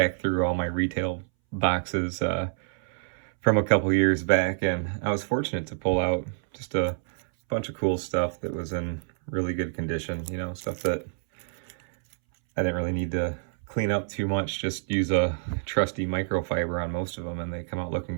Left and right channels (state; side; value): silent; left; 60 dB below the other